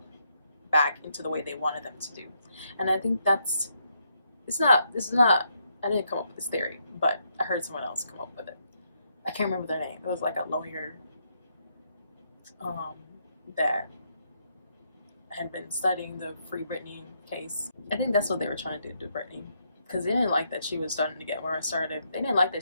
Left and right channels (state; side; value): inverted; both; correlation -0.77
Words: back into the way they wanted them to do. And I think this is not, I didn't come up with this theory, but I heard someone else come up with it. I can't remember their name. It was like a lawyer that had been studying the Free Britney case. I think that's what they were trying to do to Britney, because they didn't like that she was starting to get more assertive. They didn't like